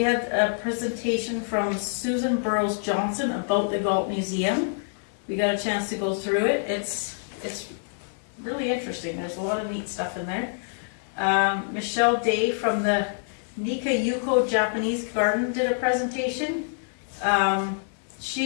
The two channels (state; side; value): silent; right; 57 dB below the other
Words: had a presentation from Susan Burrows Johnson about the Galt Museum. We got a chance to go through it. It's really interesting. There's a lot of neat stuff in there. Michelle Day from the Nika Yuko Japanese Garden did a presentation.